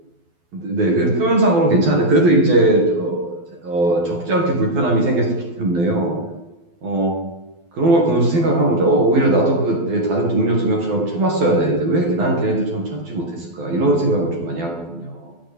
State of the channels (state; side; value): late; left; 12 ms